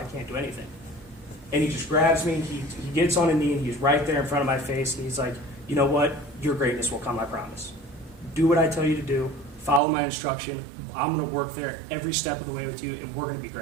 can't do anything. And he just grabs me, he gets on a knee, and he's right there in front of my face, and he's like, "You know what? Your greatness will come, I promise. Do what I tell you to do. Follow my instruction. I'm going to work there every step of the way with you, and we're going to be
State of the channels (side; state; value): left; drops out; at 9.8 s